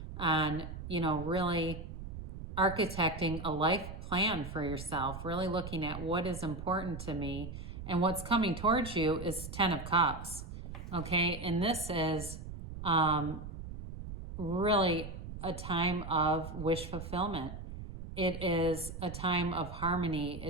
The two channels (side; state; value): right; noise; rumble, 9 dB below the sound